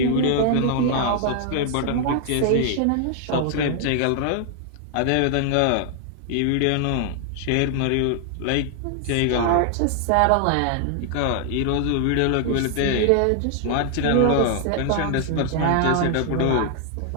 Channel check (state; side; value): different; both; correlation 0.00